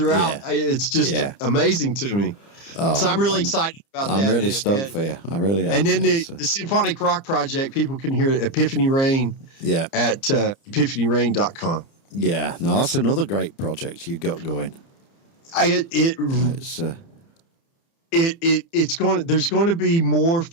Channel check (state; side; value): late; right; 30 ms